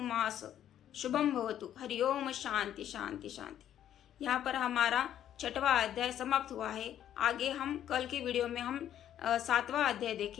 शुभम भवतु। हरिओम। शांति शांति शांति। यहाँ पर हमारा 6वां अध्याय समाप्त हुआ है। आगे हम कल के वीडियो में हम 7वां अध्याय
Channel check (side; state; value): right; quieter; 10.8 dB